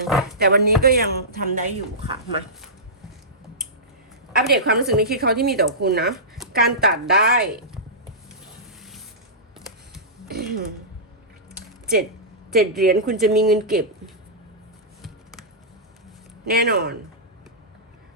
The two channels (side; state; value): both; normal; correlation -0.16